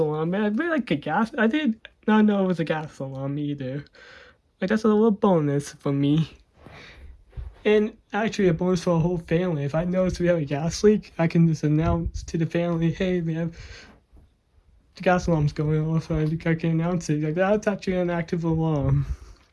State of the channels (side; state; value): both; identical; correlation 1.00